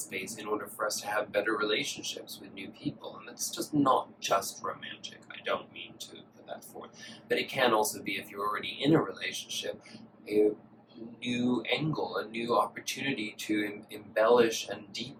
in order for us to have better relationships with new people. And it's just not just romantic. I don't mean to put that forth. But it can also be, if you're already in a relationship, a new angle, a new opportunity to embellish and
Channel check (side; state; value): both; identical; correlation 1.00